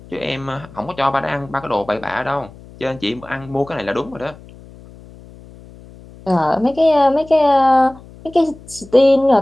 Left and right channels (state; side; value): noise; left; hum, 21 dB below the sound